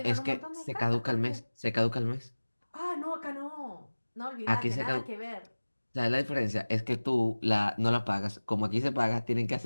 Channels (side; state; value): both; inverted; correlation -1.00